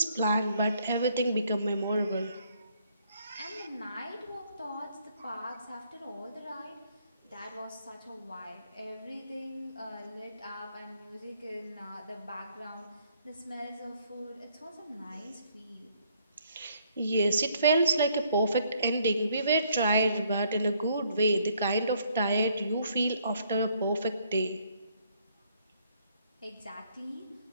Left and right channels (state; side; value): inverted; both; correlation -0.67